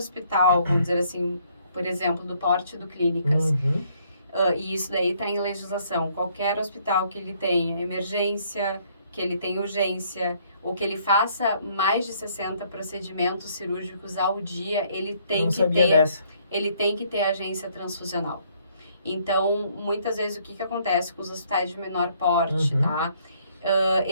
vamos dizer assim, por exemplo, do porte do Clínicas, e isso daí está em legislação. Qualquer hospital que ele tenha emergência, que ele tenha urgência, ou que ele faça mais de 60 procedimentos cirúrgicos ao dia, ele tem que ter agência transfusional. Então, muitas vezes, o que acontece com os hospitais de menor porte, tá?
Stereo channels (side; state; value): both; inverted; correlation -0.66